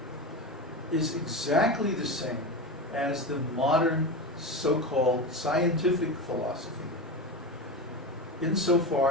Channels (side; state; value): both; normal; correlation 0.22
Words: is exactly the same as the modern so-called scientific philosophy,